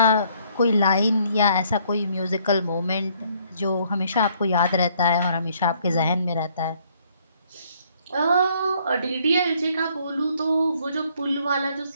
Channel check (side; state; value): both; inverted; correlation -0.65